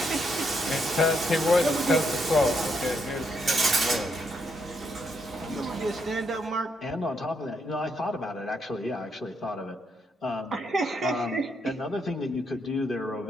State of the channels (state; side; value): normal; both; correlation 0.77